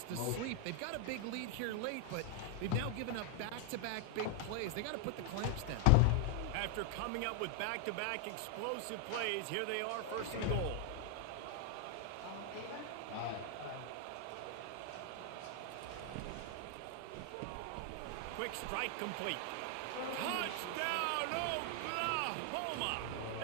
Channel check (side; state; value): both; different; correlation 0.00